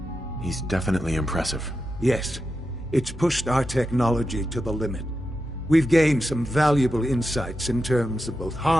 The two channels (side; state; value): both; normal; correlation 0.89